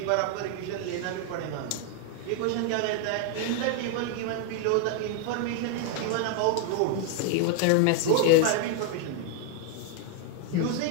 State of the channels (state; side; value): different; both; correlation 0.00